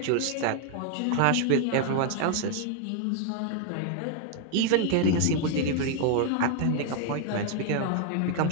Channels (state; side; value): different; both; correlation 0.00